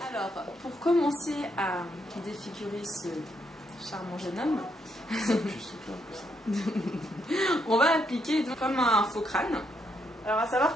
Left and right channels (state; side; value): normal; both; correlation 0.76